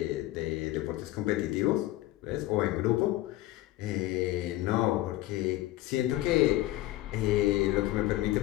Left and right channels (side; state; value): right; quieter; 16.5 dB